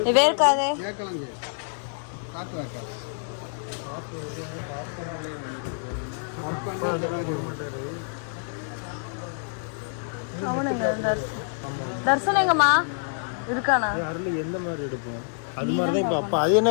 இது வேர்க்காதே. கேட்கலாங்க. காத்து வைக்காது. அவனுங்க தர்சன் எங்கம்மா இருக்கானா? அருள் எந்த மாதிரி எடுப்போம்? அது மாதிரி தான். இப்போ அப்போ அது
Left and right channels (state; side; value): silent; right; digital silence